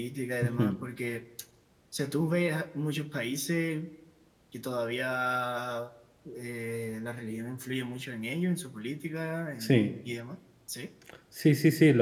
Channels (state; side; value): identical; both; correlation 1.00